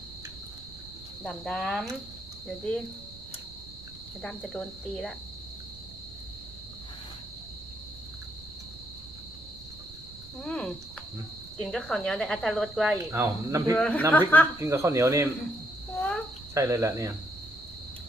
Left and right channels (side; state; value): right; noise; rumble, 18 dB below the sound